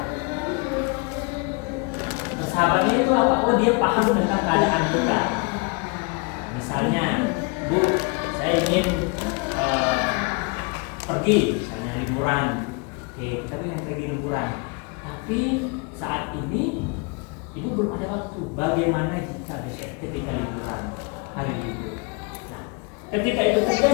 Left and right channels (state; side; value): quieter; right; 31.0 dB